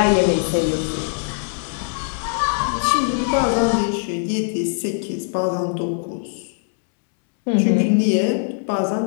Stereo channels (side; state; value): right; silent; 65 dB below the other